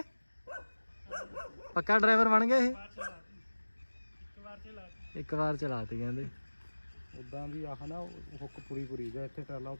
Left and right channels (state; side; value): inverted; both; correlation -1.00